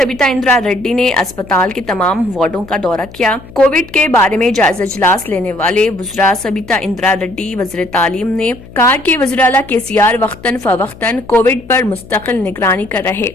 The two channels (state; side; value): noise; left; hum, 19 dB below the sound